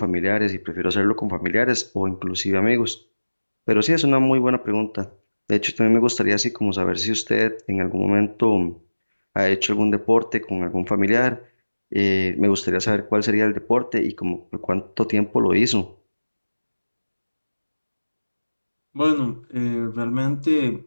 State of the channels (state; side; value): inverted; both; correlation -1.00